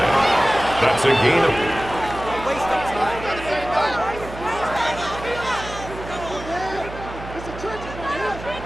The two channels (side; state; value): right; noise; hum, 12 dB below the sound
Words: That's a gain of...